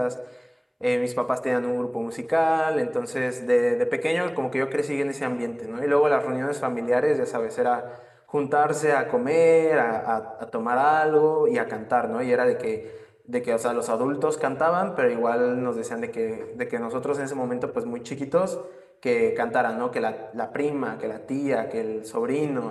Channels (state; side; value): identical; both; correlation 1.00